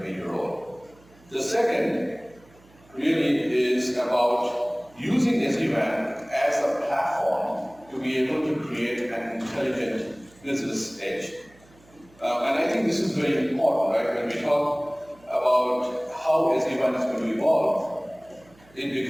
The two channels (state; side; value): noise; right; hum, 28 dB below the sound